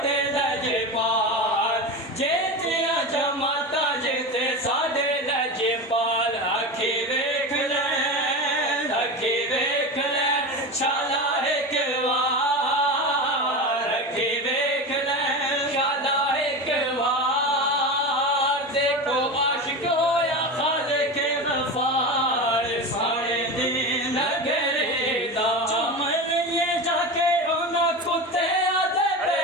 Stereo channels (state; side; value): normal; both; correlation 0.25